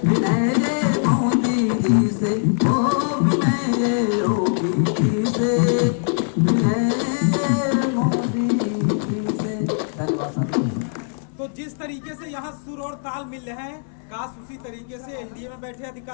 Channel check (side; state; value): right; silent; 64 dB below the other